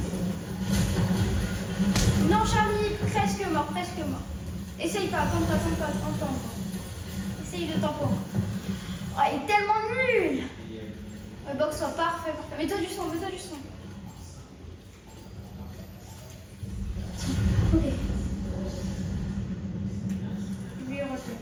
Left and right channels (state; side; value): identical; both; correlation 1.00